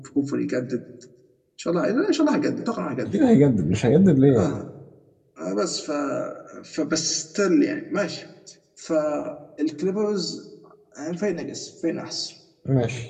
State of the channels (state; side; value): identical; both; correlation 1.00